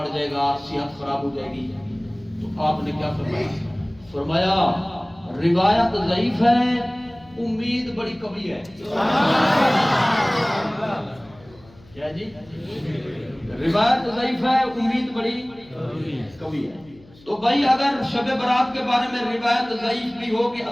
جائے گا، صحت خراب ہو جائے گی۔ تو آپ نے کیا فرمایا؟ فرمایا روایت ضعیف ہے، امید بڑی قوی ہے۔ کیا جی؟ روایت ضعیف ہے، امید بڑی قوی ہے۔ تو بھائی اگر شب برات کے بارے میں روایت ضعیف بھی ہو کہ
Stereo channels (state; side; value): noise; left; hum, 26 dB below the sound